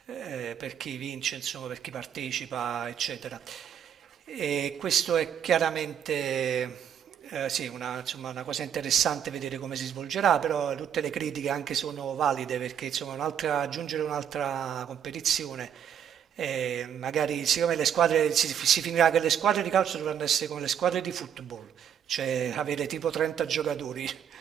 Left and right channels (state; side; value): quieter; left; 8.8 dB